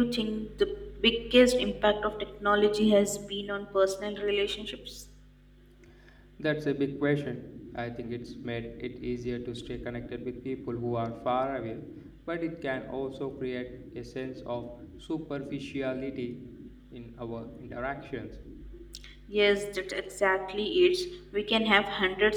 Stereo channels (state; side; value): identical; both; correlation 1.00